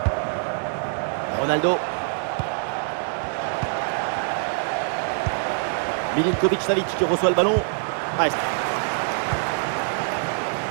Ronaldo. Milinkovic Savic qui reçoit le ballon. Ah,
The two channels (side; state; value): left; silent; 62 dB below the other